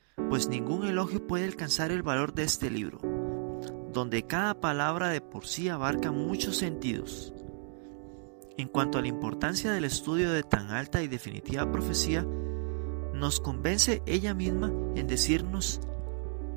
pues ningún elogio puede alcanzar el valor de este libro, donde cada palabra de por sí abarca muchos sentidos. En cuanto a la importancia del estudio de tan alta y definitiva profecía, nos convence ella misma en decirnos,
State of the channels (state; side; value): silent; left; 56 dB below the other